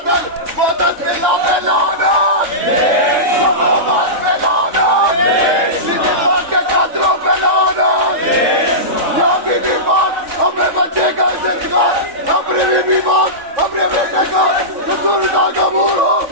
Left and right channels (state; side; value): late; left; 3.5 ms